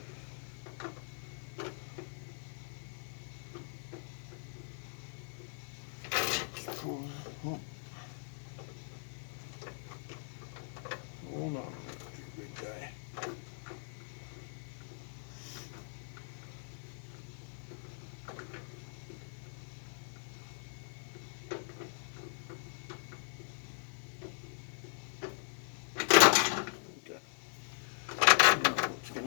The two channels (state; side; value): silent; right; digital silence